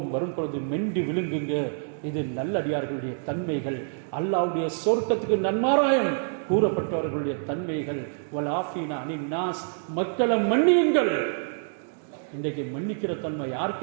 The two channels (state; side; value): silent; left; digital silence